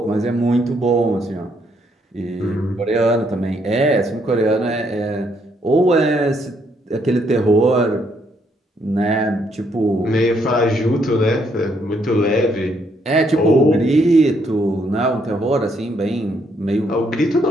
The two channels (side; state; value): both; normal; correlation 0.72